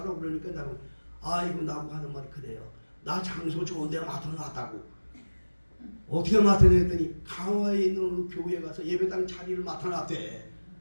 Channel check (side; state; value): both; inverted; correlation -1.00